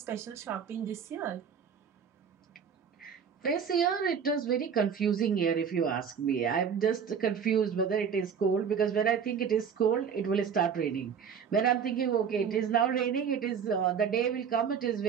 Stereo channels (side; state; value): left; quieter; 7.1 dB